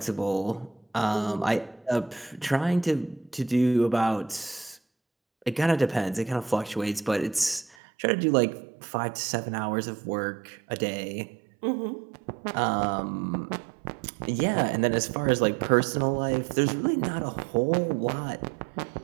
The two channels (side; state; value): left; drops out; at 7.8 s